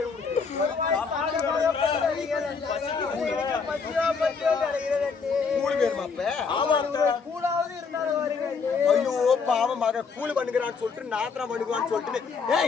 கூழ் வேணுமா அப்ப? கூழாவது இருந்தாலும் வருங்க. ஐயோ பாவம் மக கூழ் பண்ணுகிறான்னு சொல்லிட்டு நாத்திரம் பண்ணுவான்னு சொல்லிட்டு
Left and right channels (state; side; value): quieter; right; 5.3 dB